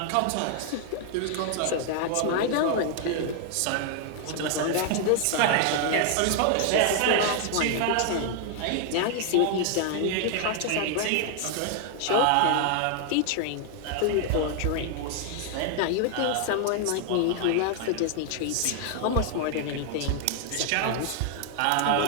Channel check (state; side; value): different; both; correlation 0.00